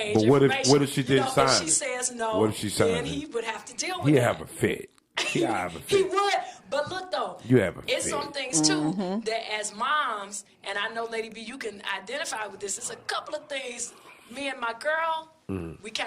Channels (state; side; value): identical; both; correlation 1.00